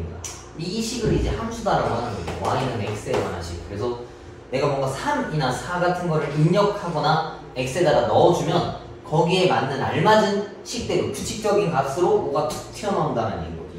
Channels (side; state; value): both; identical; correlation 1.00